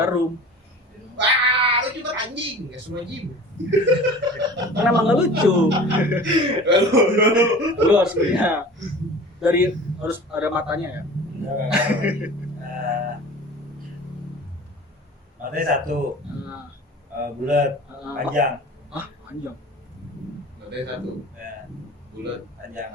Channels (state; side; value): normal; both; correlation 0.40